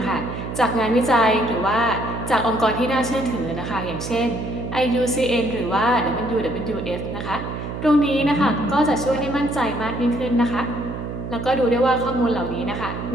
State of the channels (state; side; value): noise; right; hum, 7 dB below the sound